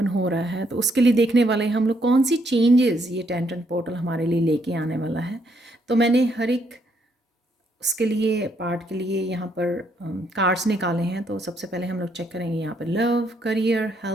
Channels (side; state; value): both; normal; correlation 0.73